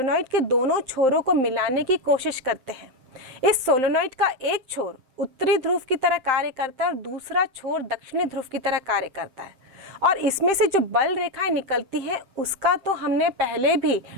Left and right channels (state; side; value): late; left; 7.7 ms